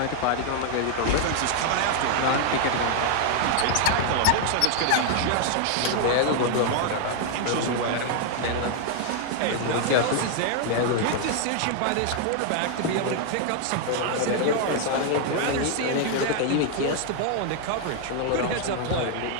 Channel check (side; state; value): both; different; correlation 0.00